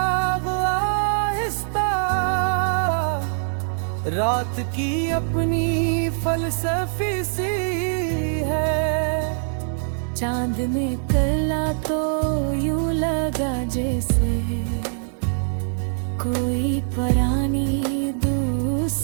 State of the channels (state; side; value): silent; left; 63 dB below the other